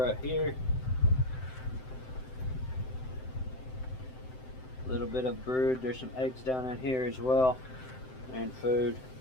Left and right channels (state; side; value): late; right; 7.8 ms